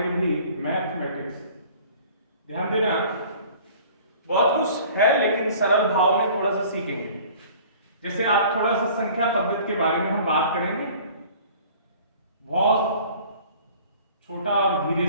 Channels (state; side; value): inverted; both; correlation -0.48